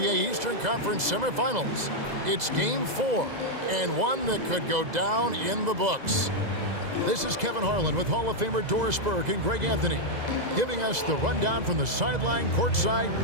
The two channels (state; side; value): late; left; 2.0 ms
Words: Eastern Conference semifinals. It's Game 4, and one that could go down in the books. This is Kevin Harlan with Hall of Famer Doris Burke and Greg Anthony, giving us the rundown from the sideline courtside,